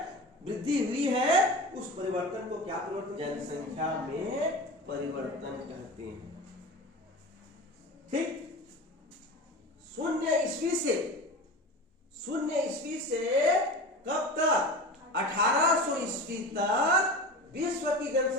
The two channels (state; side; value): normal; both; correlation 0.30